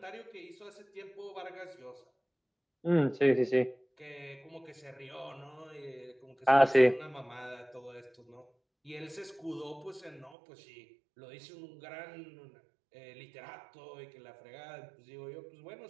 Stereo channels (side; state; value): left; drops out; at 10.4 s